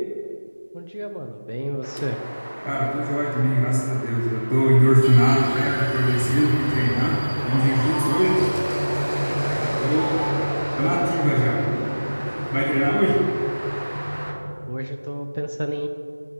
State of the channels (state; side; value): inverted; both; correlation -1.00